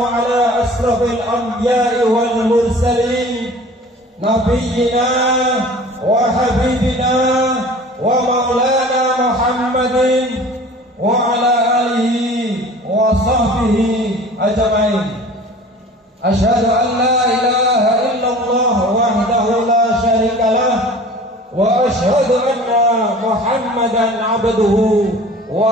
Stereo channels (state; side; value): normal; both; correlation 0.43